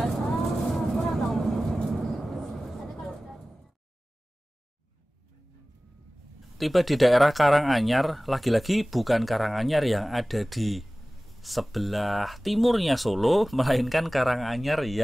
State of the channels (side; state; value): both; normal; correlation 0.98